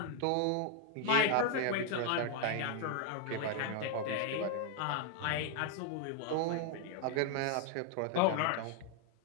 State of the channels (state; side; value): different; both; correlation 0.00